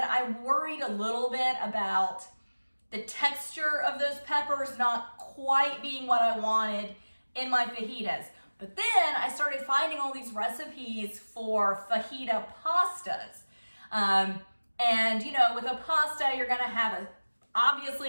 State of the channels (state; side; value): inverted; both; correlation -1.00